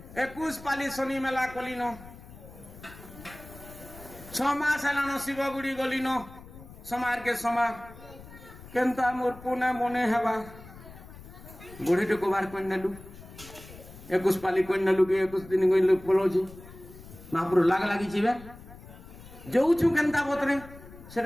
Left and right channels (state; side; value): noise; left; rumble, 18 dB below the sound